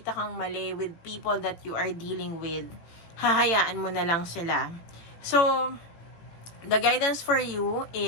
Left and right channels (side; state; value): right; late; 18 ms